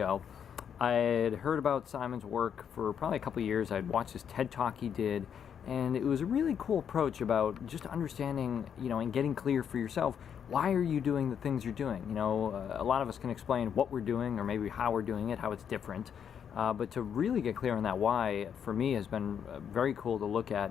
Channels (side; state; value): right; quieter; 8.1 dB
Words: I had heard about Simon's work for probably a couple of years. I'd watched this TED Talk he did, and it was a really cool approach about just understanding, and getting clear for yourself, why are you doing the things you're doing? A lot of us can explain what we're doing or maybe how we're doing it, how it's different. But to really get clear on that why, for me, has been very cool to look at